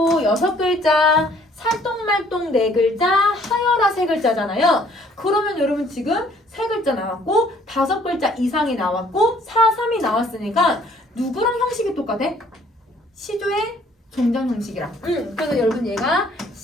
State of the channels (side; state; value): both; normal; correlation 0.60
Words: 6글자, 살똥말똥 4글자, 하여라 3글자잖아요. 그러면 여러분 지금 3글자 나왔고 5글자 이상이 나왔고 4, 3이 나왔으니까 누구랑 형식이 똑같아? 시조의 종장 형식이랑. 그래서 여러분 얘가